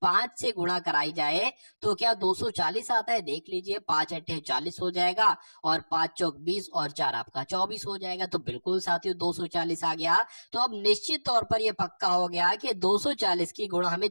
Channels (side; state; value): both; inverted; correlation -1.00